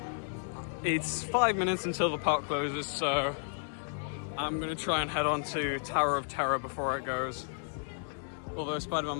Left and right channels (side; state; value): right; silent; 56 dB below the other